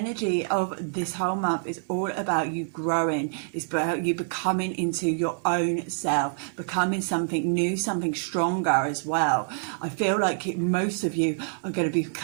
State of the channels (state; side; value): silent; left; digital silence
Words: of this whole month is all about you growing. It's about you becoming into your own self, becoming something new, something stronger as well. I feel like most of you are going to